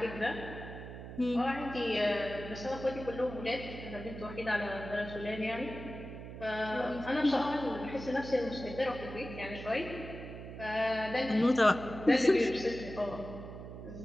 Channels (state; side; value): noise; right; hum, 11 dB below the sound